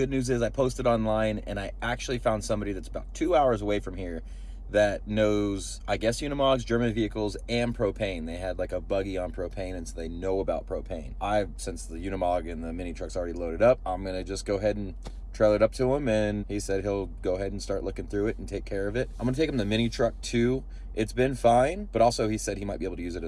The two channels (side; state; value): both; identical; correlation 1.00